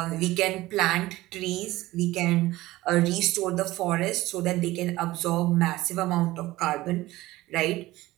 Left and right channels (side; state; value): left; quieter; 17.8 dB